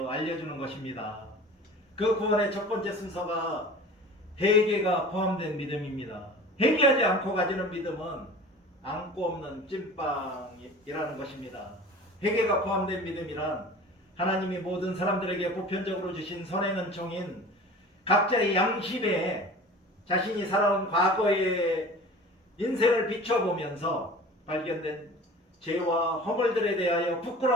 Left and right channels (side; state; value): both; normal; correlation 0.40